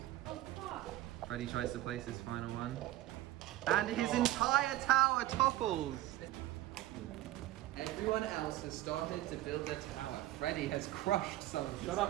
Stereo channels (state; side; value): quieter; left; 15.1 dB